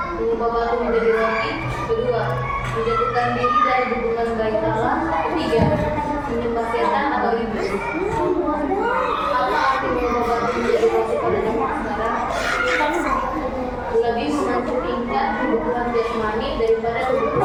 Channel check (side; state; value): both; identical; correlation 1.00